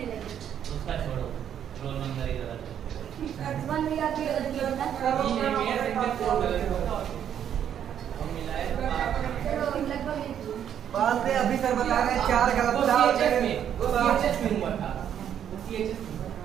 लगी। उसका छोड़ो, रोल नंबर ही गलत है। बात है अभी सर बता रहे हैं 4 गलत था।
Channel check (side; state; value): left; quieter; 9.4 dB